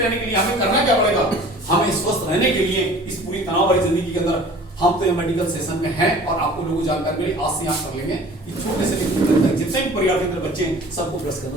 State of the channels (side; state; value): both; normal; correlation 0.46